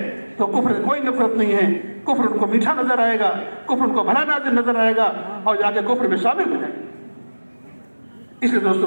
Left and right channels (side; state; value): both; inverted; correlation -1.00